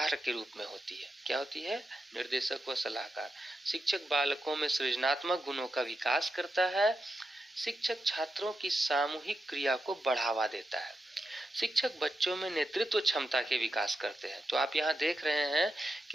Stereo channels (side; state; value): both; normal; correlation 0.87